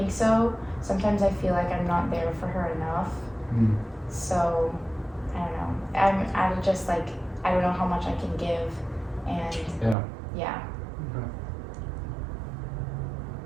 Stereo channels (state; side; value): drops out; left; at 10.0 s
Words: so. Sometimes I feel like I'm not there for her enough. So, I don't know. I'm just like, I don't know how much I can give, and yeah. Okay.